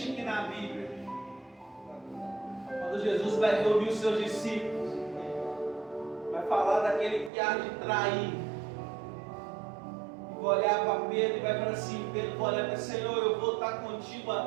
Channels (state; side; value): drops out; left; at 7.3 s